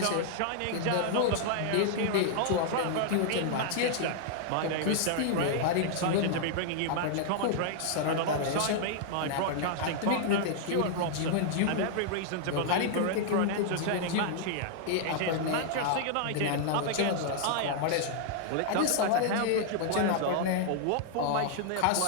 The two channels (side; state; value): both; different; correlation -0.01